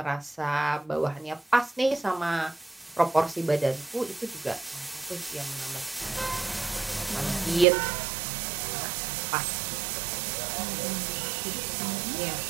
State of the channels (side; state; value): left; drops out; at 7.7 s